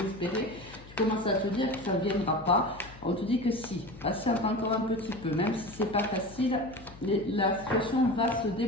Tu commences à te dire que ça ne viendra pas. On te dit que si, patiente encore un petit peu, même si c'est pas facile, la situation va se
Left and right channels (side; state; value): left; noise; hum, 20 dB below the sound